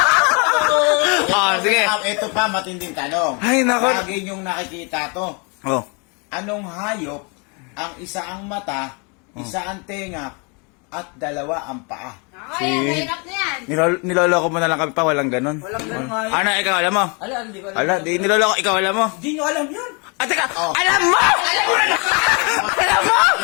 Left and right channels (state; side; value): quieter; right; 33.2 dB